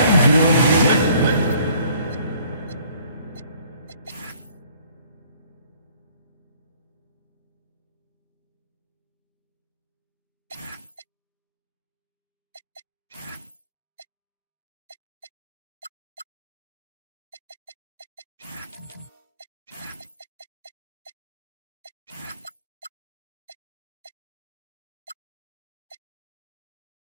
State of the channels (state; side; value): inverted; both; correlation -0.58